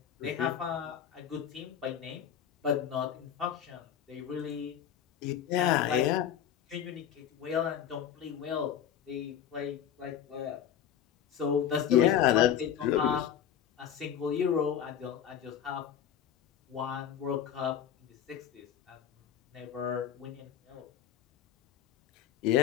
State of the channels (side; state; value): right; quieter; 9.4 dB